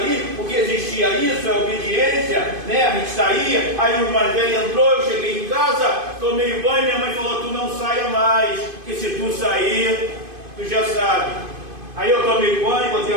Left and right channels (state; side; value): late; left; 2.5 ms